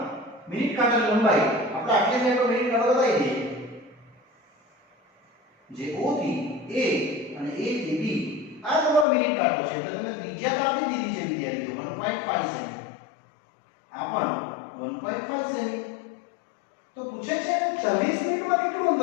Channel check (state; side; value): drops out; right; at 9.1 s